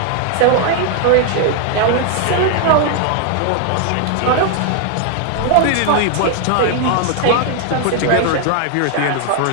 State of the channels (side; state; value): both; different; correlation 0.00